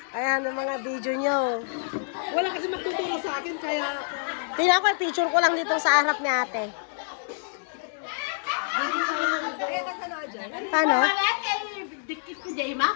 Ayan ang mga video nyo. Wala kasi magtuturo sa akin kaya Tingnan ko, picture ko lang dito sa harap ni ate. Paano? Dikit ko, Jayma.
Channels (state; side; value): silent; right; 59 dB below the other